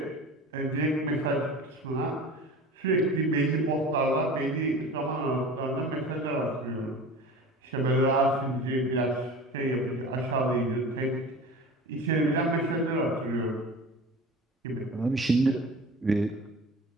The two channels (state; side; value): normal; both; correlation 0.37